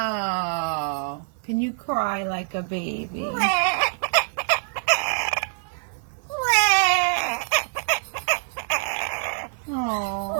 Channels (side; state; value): left; silent; 57 dB below the other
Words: Can you cry like a baby? Oh.